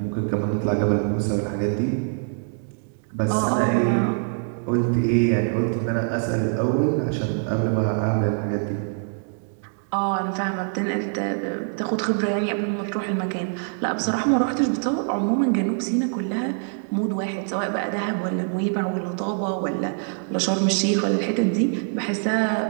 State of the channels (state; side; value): silent; left; 62 dB below the other